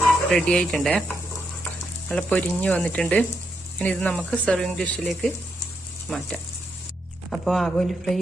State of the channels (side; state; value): both; normal; correlation 0.80